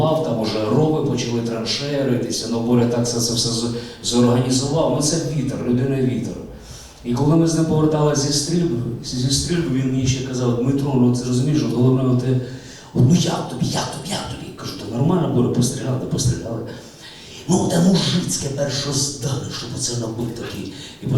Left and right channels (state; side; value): identical; both; correlation 1.00